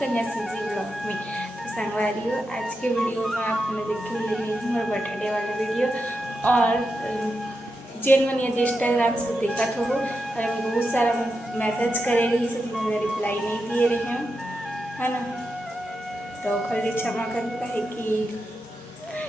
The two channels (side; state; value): both; normal; correlation 0.87